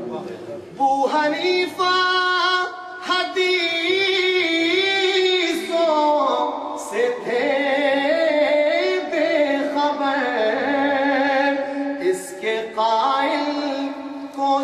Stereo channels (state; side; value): identical; both; correlation 1.00